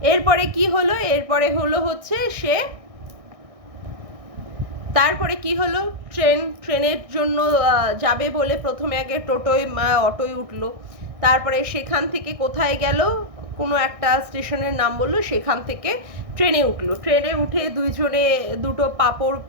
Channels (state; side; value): late; left; 1.6 ms